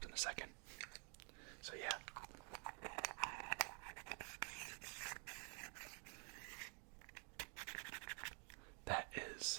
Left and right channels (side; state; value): left; quieter; 36.6 dB